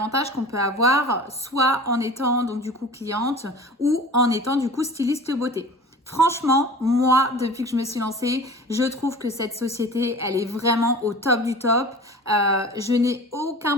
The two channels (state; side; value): normal; both; correlation 0.39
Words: qu'on peut avoir, soit en étant donc du coup cliente ou en étant du coup styliste beauté. Franchement, moi, depuis que je me suis lancée, je trouve que cette société, elle est vraiment au top du top. Je n'ai aucun